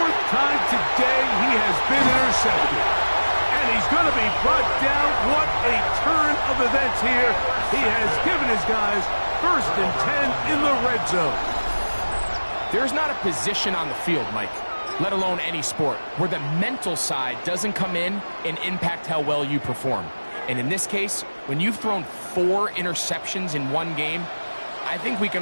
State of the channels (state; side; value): inverted; both; correlation -1.00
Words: time today, he has been intercepted. And he's going to be brought down. What a turn of events here. He has given his guys 1st and 10 in the red zone. There's not a position on the field, Mike, let alone any sport, where the mental side doesn't come in and impact how well you perform. And in this case, when you've thrown 4 interceptions in one game, I think we